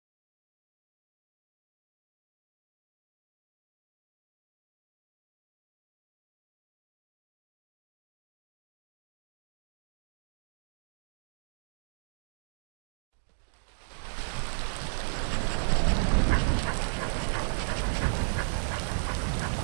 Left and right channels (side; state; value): left; silent; digital silence